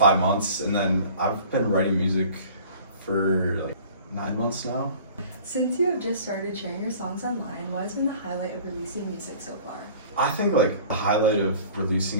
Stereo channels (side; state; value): both; inverted; correlation -0.47